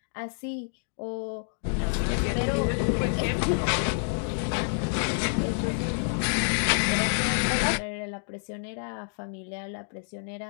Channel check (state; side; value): silent; right; digital silence